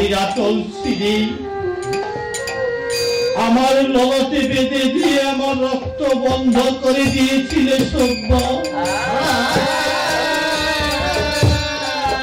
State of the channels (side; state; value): both; identical; correlation 1.00